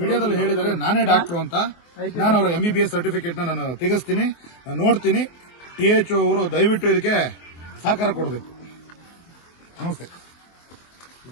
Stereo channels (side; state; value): right; late; 24 ms